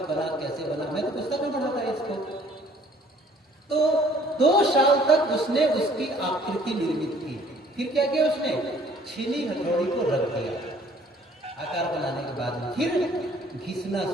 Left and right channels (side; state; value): both; normal; correlation 0.57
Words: बना, कैसे बना। मैं तो पुस्तक में पढ़ा था इसको। तो 2 साल तक उसने उसकी आकृति निर्मित की। फिर क्या किया उसने, छीनी हथौड़ी को रख दिया आकार बनाने के बाद में, फिर घिसना